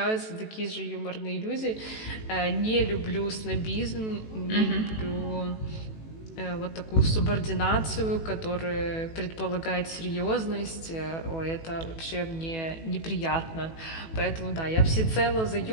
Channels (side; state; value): right; late; 18 ms